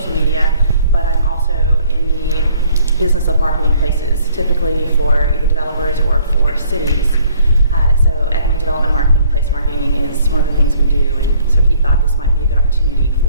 media, but I'm also in the business of marketing places, typically for either developers or for cities. So economic development marketing, place marketing is one of the things we do, and so he thought this might be a good opportunity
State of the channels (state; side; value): inverted; both; correlation -0.61